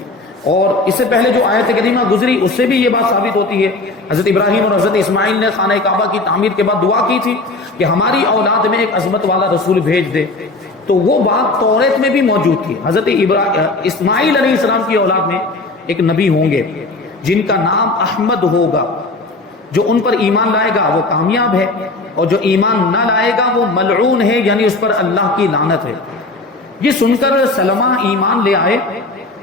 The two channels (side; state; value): right; quieter; 3.2 dB